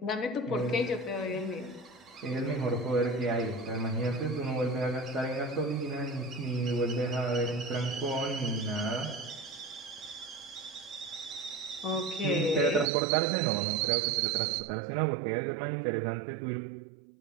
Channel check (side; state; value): left; drops out; at 12.9 s